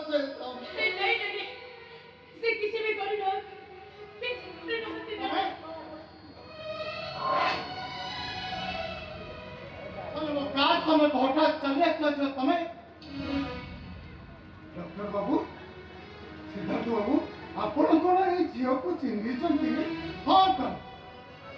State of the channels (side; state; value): both; identical; correlation 1.00